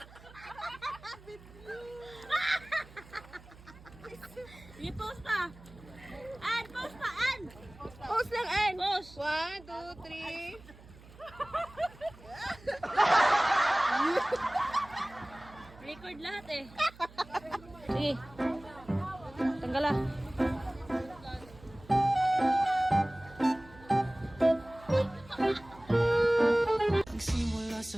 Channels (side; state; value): right; noise; hum, 21 dB below the sound